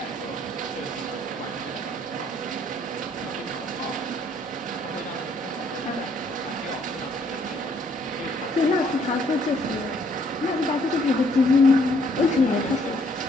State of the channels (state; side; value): normal; both; correlation 0.65